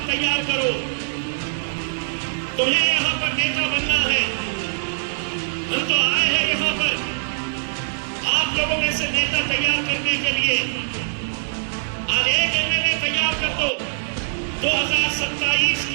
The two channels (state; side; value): silent; left; digital silence